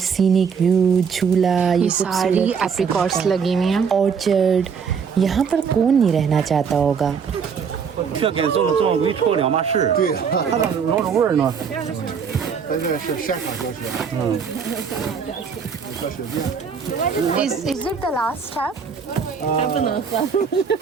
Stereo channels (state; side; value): quieter; left; 6.4 dB